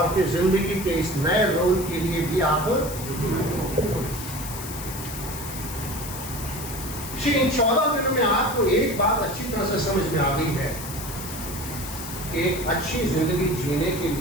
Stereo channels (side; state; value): left; noise; hiss, 10 dB below the sound